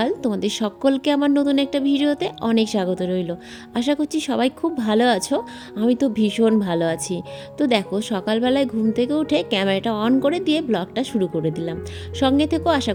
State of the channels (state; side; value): identical; both; correlation 1.00